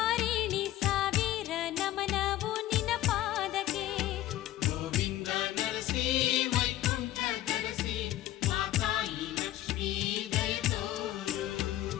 ಸಾವಿರ ನಮನವು ನಿನ ಪಾದಕ್ಕೆ ಗೋವಿಂದ ನರಸಿ ವೈಕುಂಠ ಧರಸಿ ಮಾತಾಯಿ ಲಕ್ಷ್ಮೀ ದಯತೋರು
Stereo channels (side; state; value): right; quieter; 14.5 dB